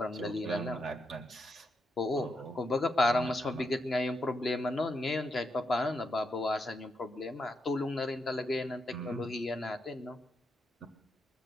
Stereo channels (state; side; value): normal; both; correlation 0.82